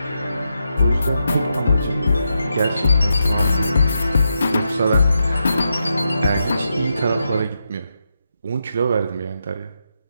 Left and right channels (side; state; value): both; inverted; correlation -0.85